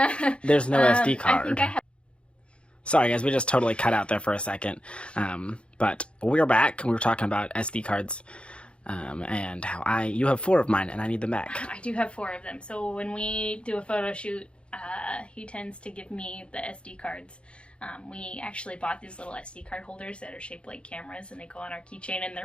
there's no SD card. I think I have. Sorry, guys, we just totally cut out there for a second. But we're back. We were talking about SD cards and how you have 4 of mine, and I need them back. I do have 4 of them. So when we do a photo shoot, he tends to give me the SD cards. We actually bought these little SD card holders that are shaped like cameras, and they go on our keychain, and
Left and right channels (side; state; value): right; late; 0.057 ms